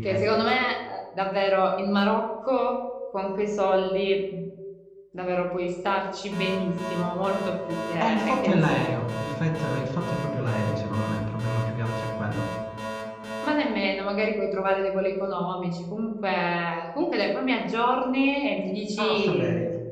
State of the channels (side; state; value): both; identical; correlation 1.00